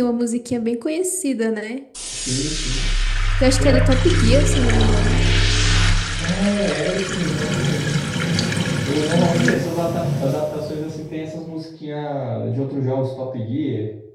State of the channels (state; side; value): identical; both; correlation 1.00